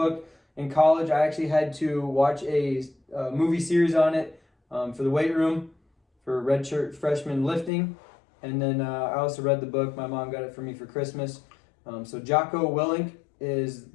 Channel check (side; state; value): right; drops out; at 7.7 s